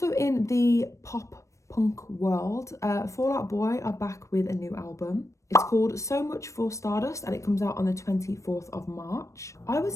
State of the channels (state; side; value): late; right; 0.15 ms